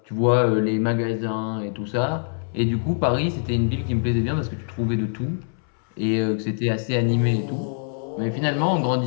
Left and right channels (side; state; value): right; silent; 63 dB below the other